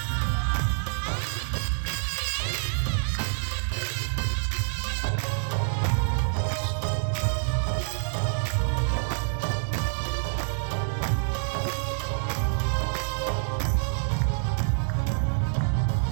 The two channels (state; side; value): silent; left; 60 dB below the other